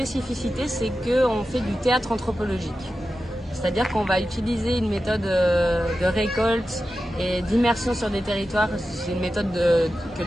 c'est qu'on fait du théâtre anthropologique. C'est-à-dire qu'on va utiliser une méthode de récolte et d'immersion sur des territoires. C'est une méthode que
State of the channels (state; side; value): normal; both; correlation 0.92